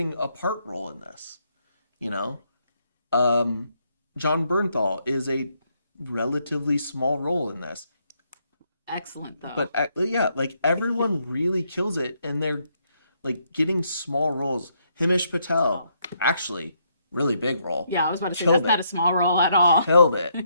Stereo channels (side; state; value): both; inverted; correlation -0.74